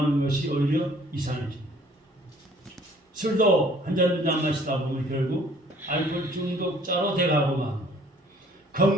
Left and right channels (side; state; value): both; normal; correlation 0.57